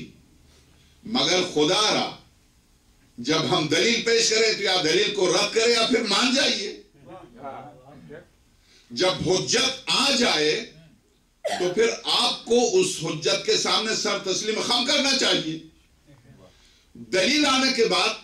مگر خدا را جب ہم دلیل پیش کریں تو یا دلیل کو رد کریں یا پھر مان جائیے. جب حجت آ جائے تو پھر آپ کو اس حجت کے سامنے سر تسلیم خم کرنا چاہیے. دلیل آنے کے بعد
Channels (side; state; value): both; identical; correlation 1.00